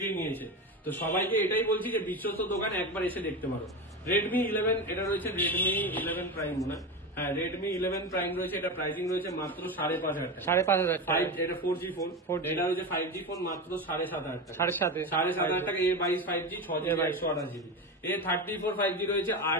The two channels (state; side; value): normal; both; correlation 0.21